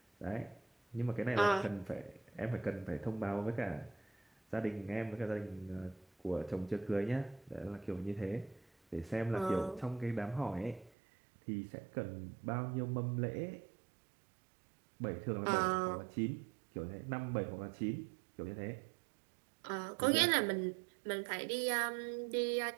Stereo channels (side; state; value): left; drops out; at 10.9 s